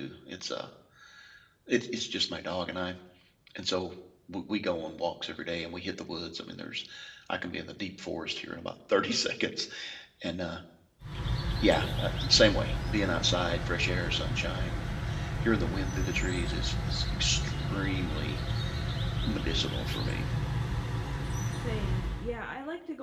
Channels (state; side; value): identical; both; correlation 1.00